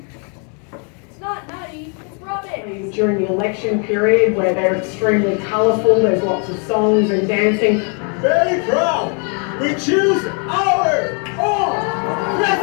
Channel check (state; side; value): quieter; right; 39.2 dB